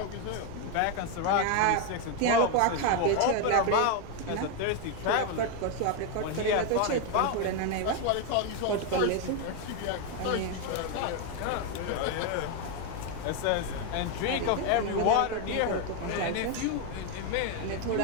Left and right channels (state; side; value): different; both; correlation 0.01